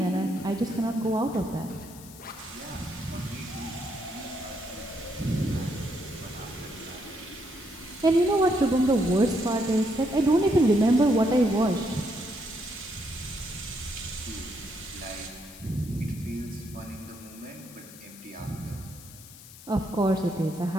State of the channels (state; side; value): noise; left; hiss, 18 dB below the sound